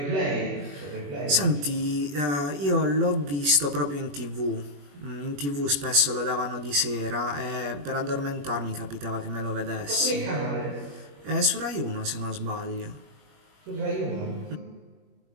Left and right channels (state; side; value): late; left; 21 ms